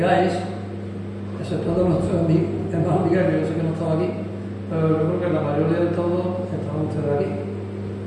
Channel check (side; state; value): both; identical; correlation 1.00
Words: exceptuando nuestro hermano Miguel, que yo sé que no estaba aquí, pero yo creo que la mayoría de todos estaban ustedes aquí.